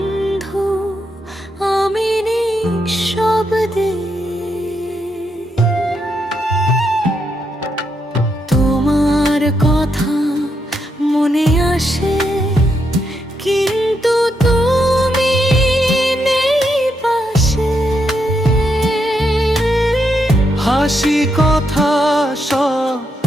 আমি নিঃশব্দে তোমার কথা মনে আসে, কিন্তু তুমি নেই পাশে। হাসি কথা সব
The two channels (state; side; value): normal; both; correlation 0.80